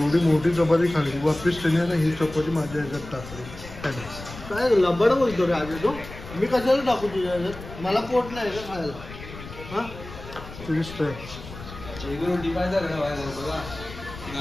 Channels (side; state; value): left; noise; rumble, 14 dB below the sound